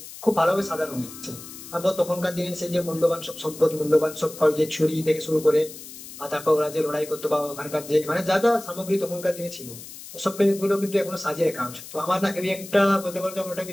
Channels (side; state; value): left; noise; hiss, 14 dB below the sound